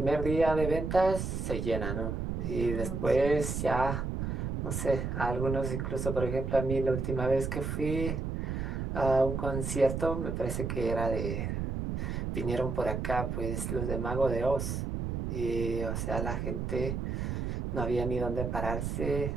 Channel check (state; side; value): noise; right; rumble, 2 dB below the sound